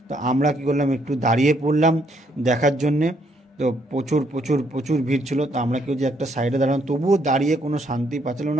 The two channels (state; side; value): normal; both; correlation 0.71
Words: তো আমরা কী করলাম, একটু দাঁড়িয়ে পড়লাম দেখার জন্যে। তো প্রচুর ভিড় ছিল। তো আমরা কেউ যে একটা সাইডে দাঁড়ালাম, তবুও দাঁড়িয়ে কোনো শান্তি পাচ্ছিলাম